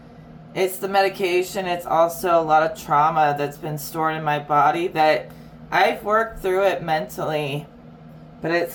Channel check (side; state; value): both; identical; correlation 1.00